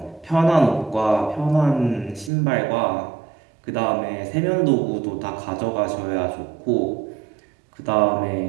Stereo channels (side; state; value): left; drops out; at 2.3 s